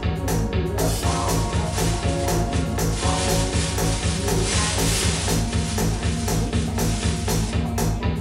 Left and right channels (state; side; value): identical; both; correlation 1.00